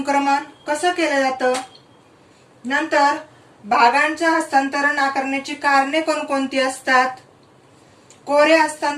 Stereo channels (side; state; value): both; identical; correlation 1.00